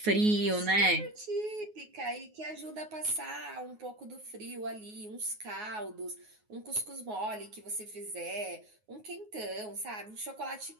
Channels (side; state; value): left; late; 9.5 ms